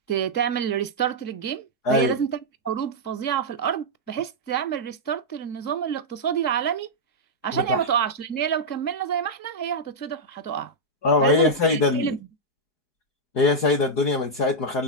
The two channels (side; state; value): right; late; 4.6 ms